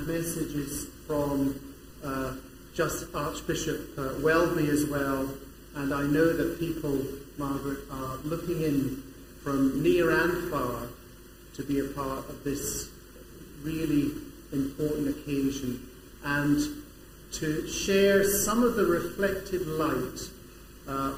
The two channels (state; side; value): identical; both; correlation 1.00